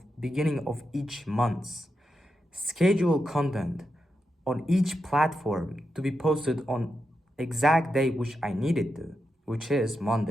beginning of each month, schedule content on each platform to be posted on exact day which I needed to, which is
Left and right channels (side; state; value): both; normal; correlation 0.87